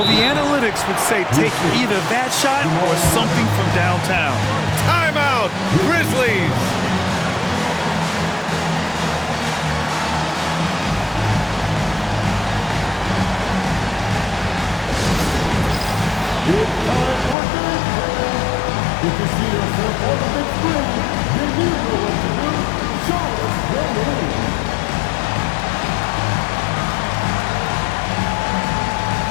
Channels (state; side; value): drops out; right; at 17.4 s